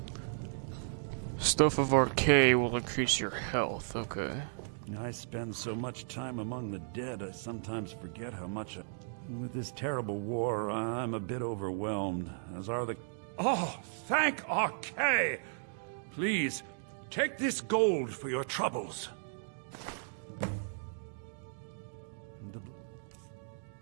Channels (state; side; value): silent; left; digital silence